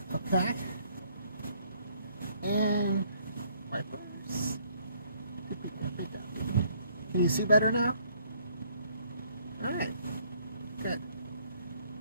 Okay. And wipers. Can you see better now? Alright. Good.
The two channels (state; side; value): inverted; both; correlation -0.65